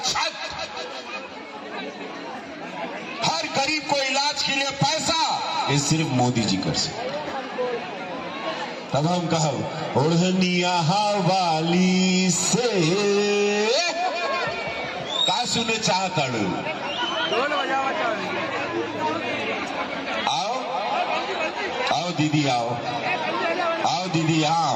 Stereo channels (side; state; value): both; identical; correlation 1.00